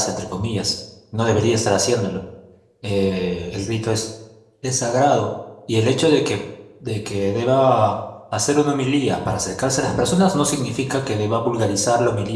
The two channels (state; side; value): identical; both; correlation 1.00